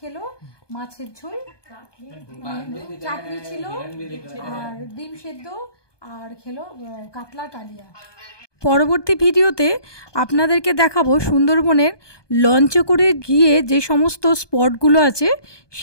মাছের ঝোল, চাটনি ছিল, আর ডিম সেদ্ধ, আর খেলো কাতলা কালিয়া। পরবর্তী ভিডিওতে আপনাদেরকে দেখাবো সুন্দরবনের লঞ্চে করে গিয়ে যে সমস্ত স্পটগুলো আছে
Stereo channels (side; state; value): right; late; 1.2 ms